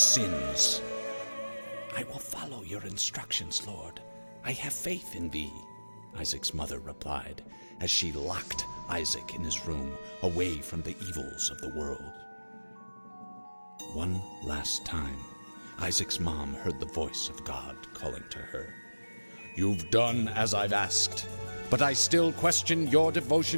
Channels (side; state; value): both; inverted; correlation -1.00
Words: "I will follow your instructions, Lord. I have faith in thee," Isaac's mother replied, as she locked Isaac in his room, away from the evils of the world. One last time, Isaac's mom heard the voice of God calling to her. "You've done as I've asked, but I still question your